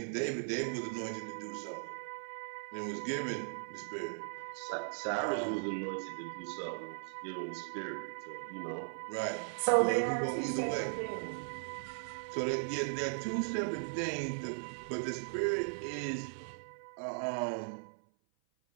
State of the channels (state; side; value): silent; left; 52 dB below the other